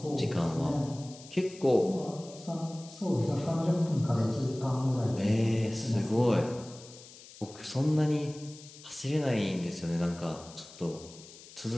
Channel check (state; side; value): noise; left; hiss, 19 dB below the sound